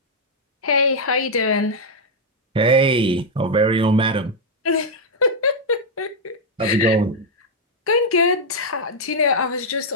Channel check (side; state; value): both; normal; correlation -0.01